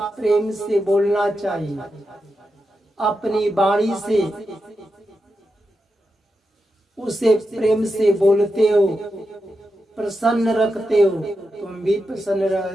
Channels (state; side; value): normal; both; correlation 0.88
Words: प्रेम से बोलना चाहिए। अपनी वाणी से उसे प्रेम से बोलते हो, प्रसन्न रखते हो, तुम भी प्रसन्न